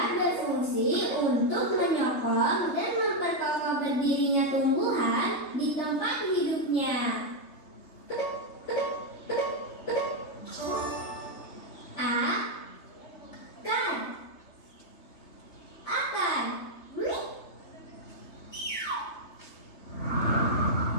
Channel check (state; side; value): late; right; 3.3 ms